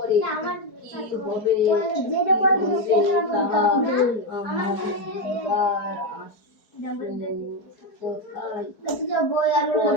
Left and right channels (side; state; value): right; late; 4.7 ms